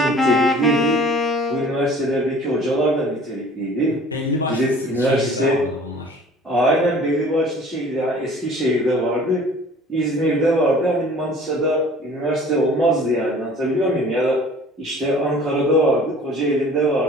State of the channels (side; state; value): both; normal; correlation 0.48